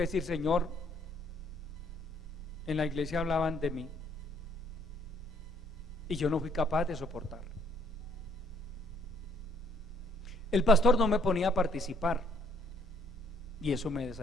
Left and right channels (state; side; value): normal; both; correlation 0.65